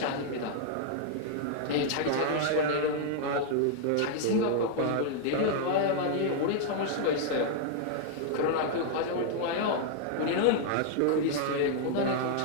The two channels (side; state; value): both; different; correlation -0.01